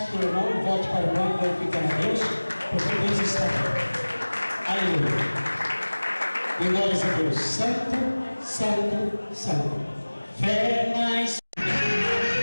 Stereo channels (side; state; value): both; inverted; correlation -1.00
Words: o irmão, volte para o irmão, glorificando a Deus, porque Deus está aqui. Aleluia. E glórias a Deus. Santo, santo, santo. Fé mais.